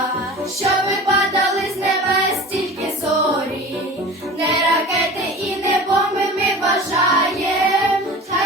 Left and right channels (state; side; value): normal; both; correlation 0.37